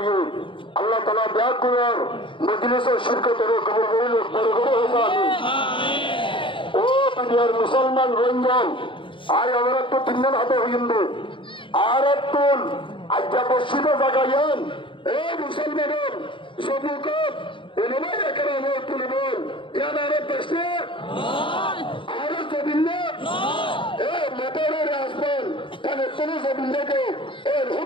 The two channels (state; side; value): late; right; 0.25 ms